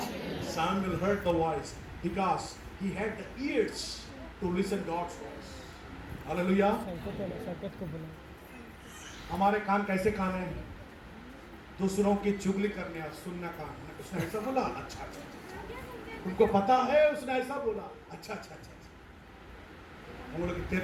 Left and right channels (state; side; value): identical; both; correlation 1.00